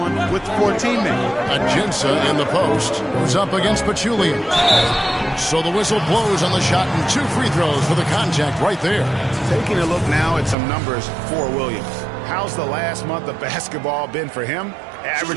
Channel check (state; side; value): drops out; left; at 10.6 s